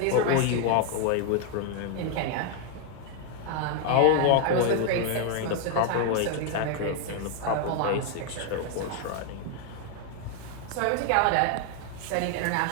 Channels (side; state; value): both; different; correlation 0.00